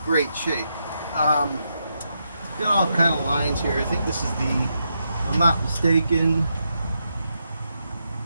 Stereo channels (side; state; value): both; inverted; correlation -0.83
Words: great shape. got all kind of lines here. I think this is the, if I'm not mistaken,